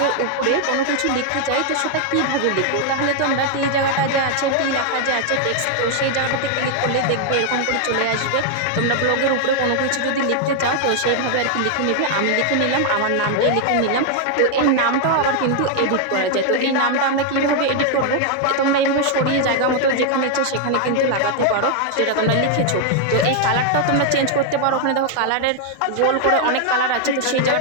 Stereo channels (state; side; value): different; both; correlation 0.00